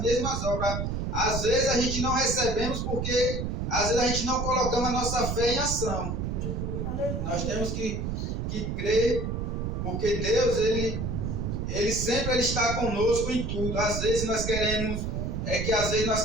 mesmas obras. Às vezes a gente não recebemos porque às vezes a gente não colocamos a nossa fé em ação. Nós temos que crer, porque Deus, ele sempre está conosco em tudo. Às vezes nós queremos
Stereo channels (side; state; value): right; noise; rumble, 2 dB below the sound